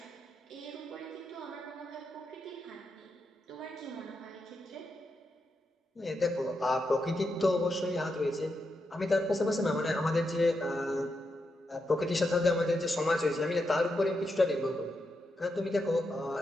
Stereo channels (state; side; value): normal; both; correlation 0.84